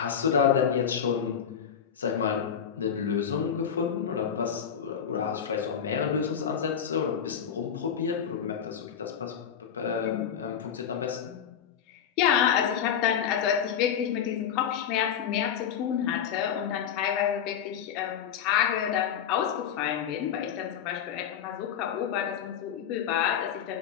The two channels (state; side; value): quieter; right; 8.3 dB